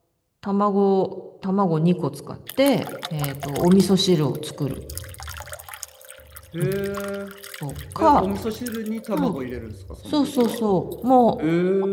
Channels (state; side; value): identical; both; correlation 1.00